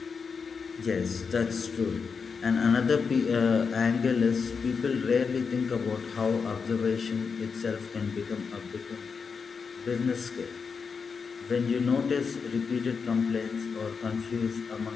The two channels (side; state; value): right; quieter; 5.5 dB